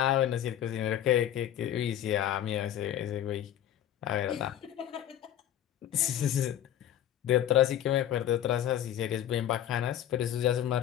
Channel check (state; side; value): quieter; right; 11.3 dB